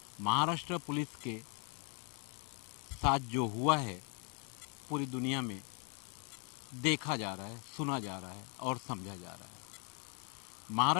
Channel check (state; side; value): quieter; right; 37.9 dB